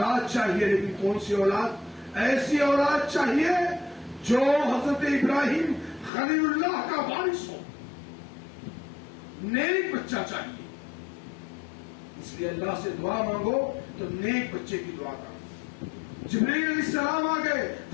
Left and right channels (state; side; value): drops out; right; at 6.1 s